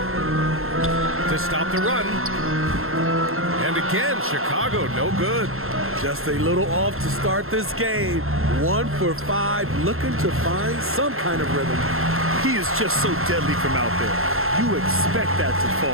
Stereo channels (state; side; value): late; left; 0.62 ms